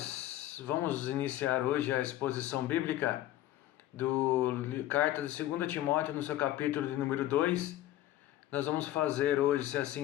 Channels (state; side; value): quieter; right; 14.1 dB